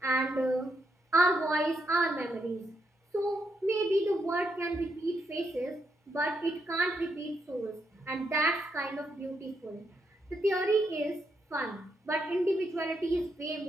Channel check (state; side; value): normal; both; correlation 0.80